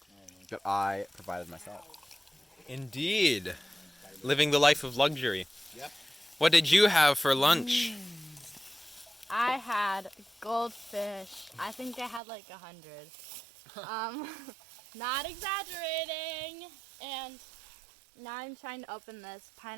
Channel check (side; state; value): left; drops out; at 12.2 s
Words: that I provided myself. Indeed. Living the life of luxury. Yep. What did you have for lunch? I had goldfish. I think I had like 100. Not exaggerating. And now I'm trying to open this